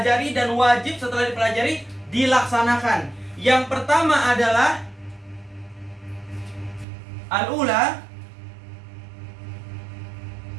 dan wajib setelah dipelajari dilaksanakan. Yang pertama adalah al-ula.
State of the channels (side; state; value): left; drops out; at 6.9 s